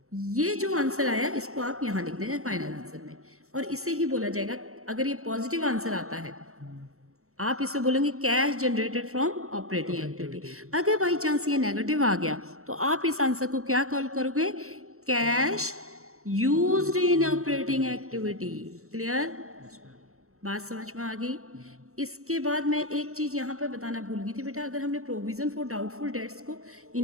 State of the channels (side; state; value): left; late; 0.64 ms